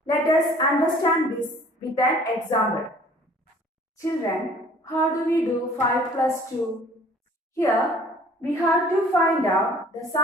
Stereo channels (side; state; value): both; normal; correlation 0.53